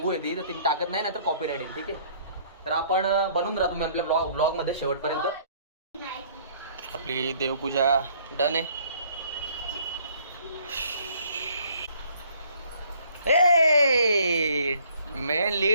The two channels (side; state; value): both; inverted; correlation -0.60